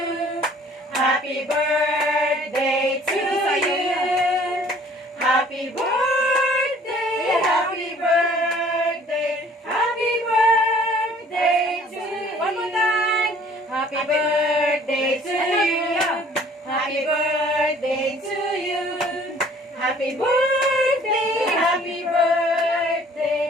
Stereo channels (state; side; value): normal; both; correlation 0.55